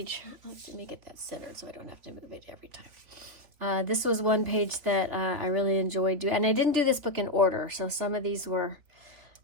Let me get that centered so I don't have to move it every time. This was one page that I really enjoyed doing. And I didn't do this book in order, so some of these were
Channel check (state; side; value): late; left; 3.5 ms